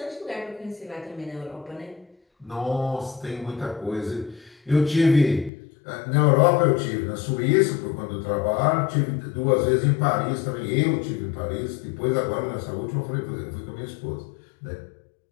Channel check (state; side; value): drops out; right; at 5.5 s